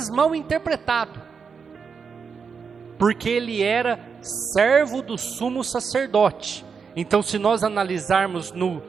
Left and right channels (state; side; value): quieter; left; 5.9 dB